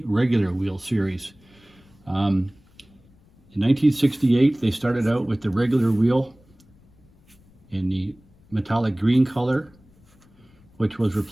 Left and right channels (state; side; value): noise; left; rumble, 30 dB below the sound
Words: regular wheel series. In 1968 they started out with the regular wheel in the metallic green color, which was